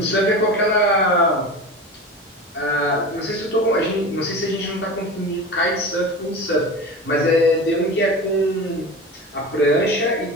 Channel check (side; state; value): both; normal; correlation 0.31